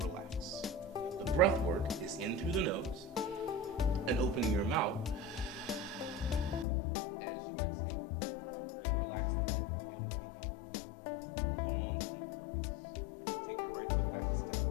The breath work is in through the nose and opening your mouth as you exhale. We're gonna relax the head and we'll begin. Long, deep breaths. Take your right foot back a step,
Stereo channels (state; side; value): drops out; right; at 6.7 s